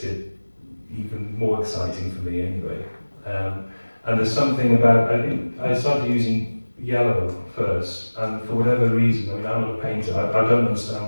it even more exciting for me anyway. And there's something about, I think I started using yellow first, and for whatever reason, I'm not a painter, I don't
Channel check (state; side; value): inverted; both; correlation -1.00